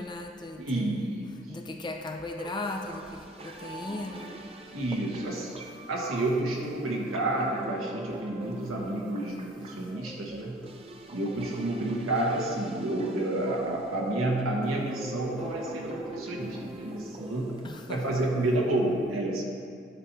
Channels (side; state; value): both; normal; correlation 0.51